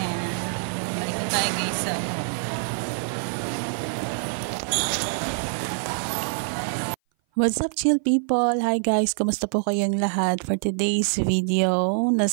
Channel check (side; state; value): left; silent; 58 dB below the other